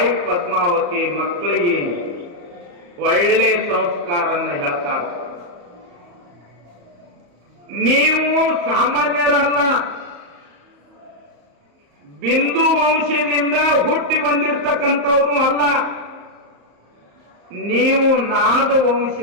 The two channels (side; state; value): left; late; 34 ms